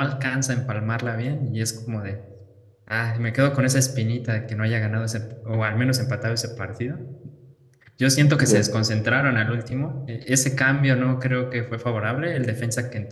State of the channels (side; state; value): both; identical; correlation 1.00